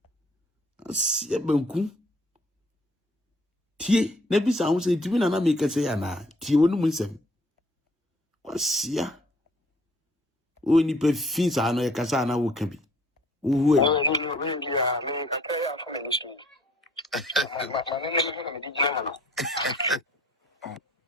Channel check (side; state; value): both; normal; correlation 0.58